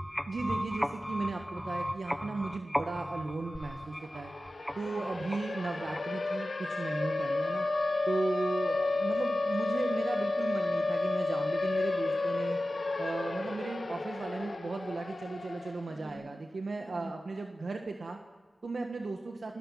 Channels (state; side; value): normal; both; correlation 0.94